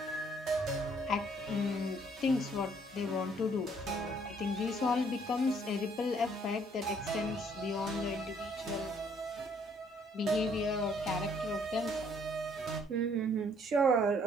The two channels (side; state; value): both; normal; correlation 0.64